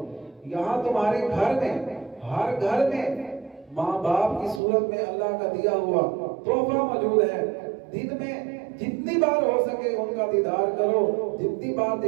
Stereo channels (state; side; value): drops out; left; at 4.6 s